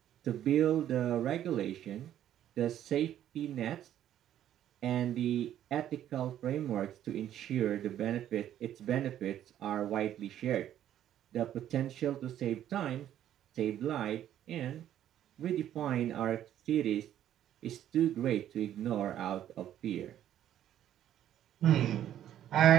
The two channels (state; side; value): quieter; left; 11.3 dB